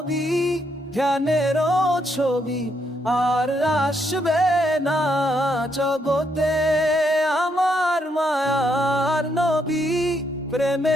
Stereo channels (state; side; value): normal; both; correlation 0.76